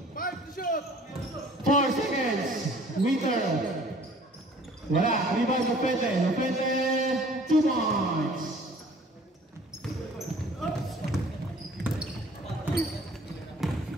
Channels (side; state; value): both; normal; correlation 0.52